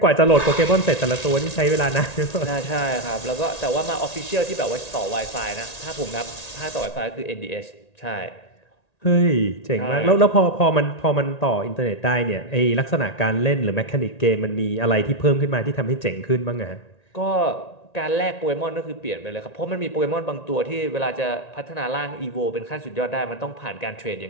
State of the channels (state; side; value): late; right; 1.9 ms